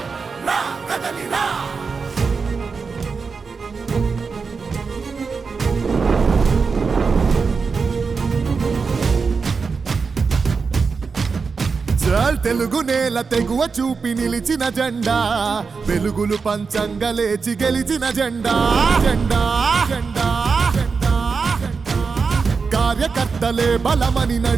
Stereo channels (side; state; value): left; quieter; 5.0 dB